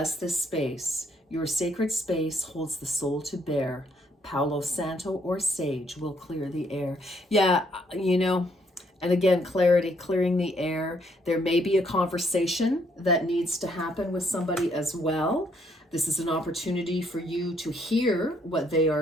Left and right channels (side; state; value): both; normal; correlation 0.70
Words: this space. Your sacred space holds the soul to bear. Palo Santo or sage will clear the air. Yeah, and again, clarity, clearing the air. There may be a conversation that needs to happen with somebody as well. This is an opportunity for you to hear what they